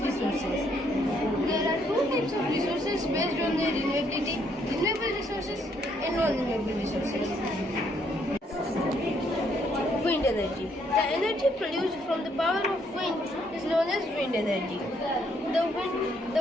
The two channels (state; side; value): normal; both; correlation 0.70